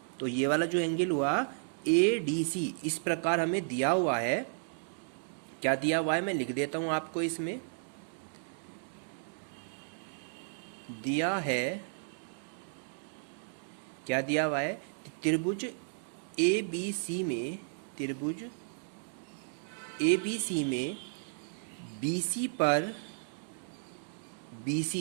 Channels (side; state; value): left; silent; digital silence